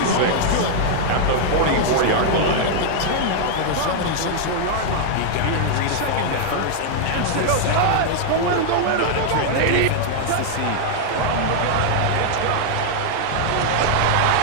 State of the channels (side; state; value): both; different; correlation 0.00